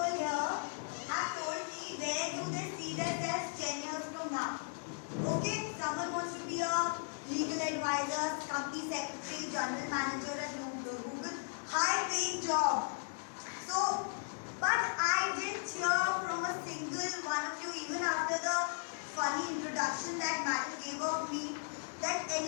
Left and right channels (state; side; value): silent; right; digital silence